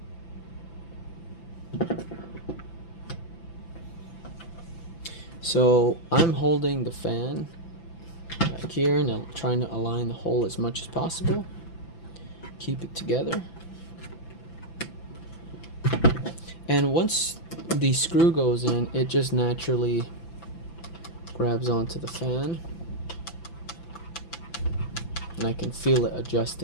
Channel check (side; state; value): right; late; 5.9 ms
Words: So I'm holding the fan back here and I'm trying to align the hole as much as possible. Keep it together. And once the screw goes in, it just naturally grabs onto the fan. And I can feel it